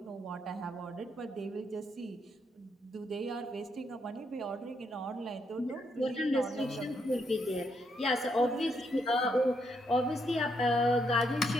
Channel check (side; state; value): both; normal; correlation 0.76